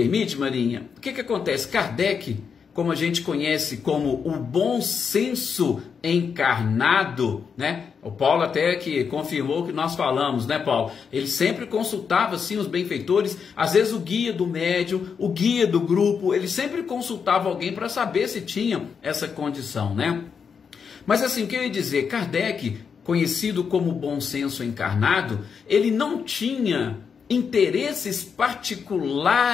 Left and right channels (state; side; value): quieter; right; 6.3 dB